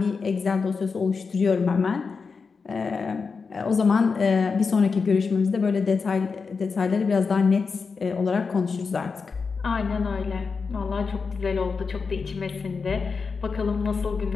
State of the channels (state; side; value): quieter; right; 5.0 dB